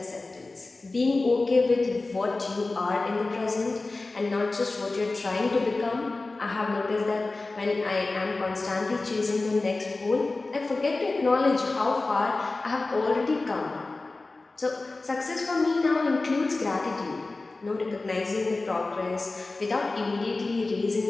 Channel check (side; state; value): right; quieter; 3.3 dB